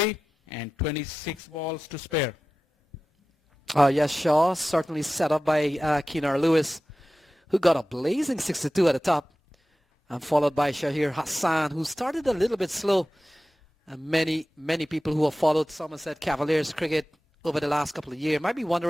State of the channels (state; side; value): normal; both; correlation 0.95